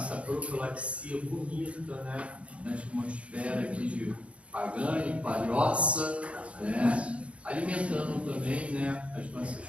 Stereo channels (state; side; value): late; left; 0.062 ms